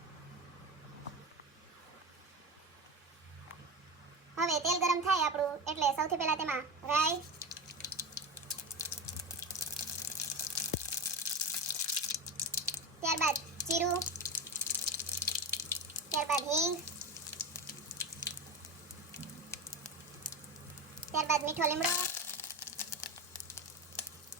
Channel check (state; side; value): normal; both; correlation 0.22